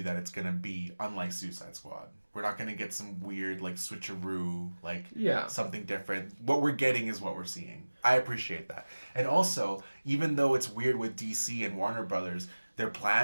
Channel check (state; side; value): inverted; both; correlation -1.00